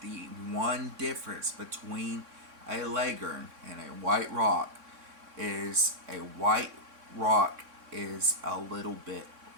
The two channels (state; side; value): late; left; 3.6 ms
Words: the one difference between a leghorn and a white rock is a white rock is a little bit